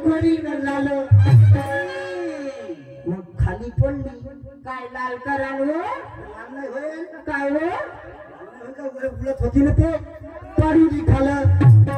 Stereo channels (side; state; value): both; identical; correlation 1.00